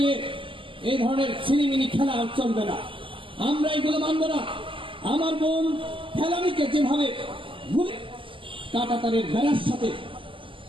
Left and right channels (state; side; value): late; left; 0.25 ms